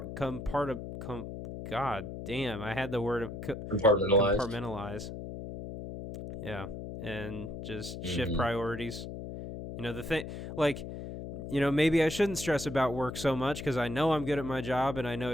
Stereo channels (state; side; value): noise; left; hum, 8 dB below the sound